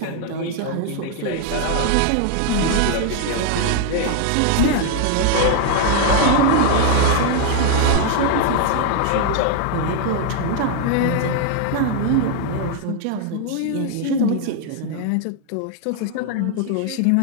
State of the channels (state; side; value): different; both; correlation 0.00